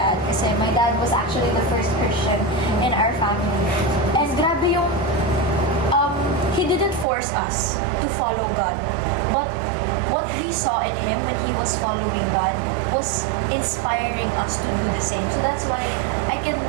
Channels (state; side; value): drops out; left; at 7.1 s